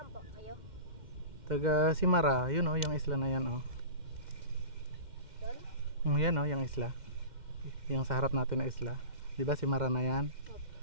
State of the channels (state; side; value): late; left; 2.1 ms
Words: po kayo? Taga Simara, yun oh, yung isla na yan oh. Doon? Yan oh, yung isla. Yung sa harap natin na isla. Di ba Simara na yan?